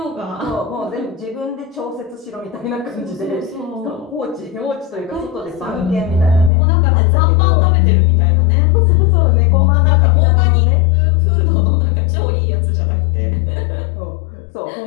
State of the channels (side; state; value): right; drops out; at 6.5 s